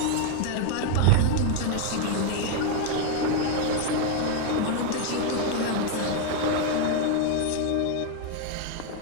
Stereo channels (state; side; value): different; both; correlation 0.01